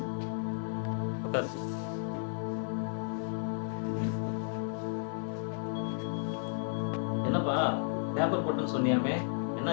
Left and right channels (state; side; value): silent; right; 56 dB below the other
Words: என்னப்பா பேப்பர் போட்டுன்னு சொன்னியாமே,